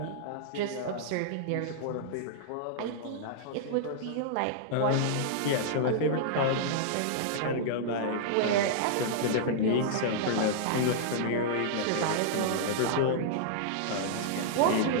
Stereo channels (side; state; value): both; different; correlation -0.02